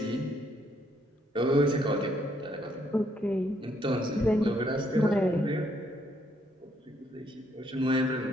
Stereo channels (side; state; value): both; normal; correlation 0.71